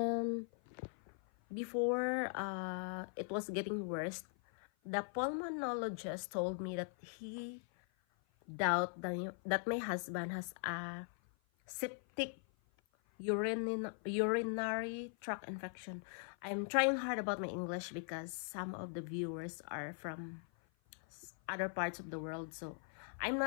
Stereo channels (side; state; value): right; silent; 51 dB below the other